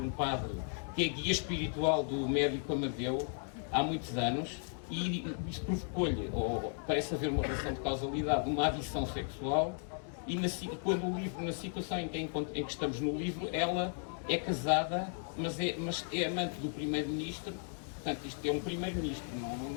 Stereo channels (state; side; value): silent; right; 54 dB below the other